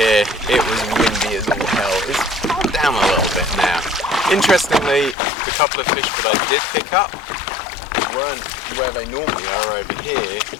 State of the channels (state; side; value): drops out; right; at 5.2 s